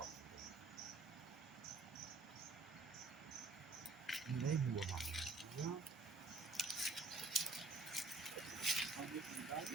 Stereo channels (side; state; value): left; quieter; 3.5 dB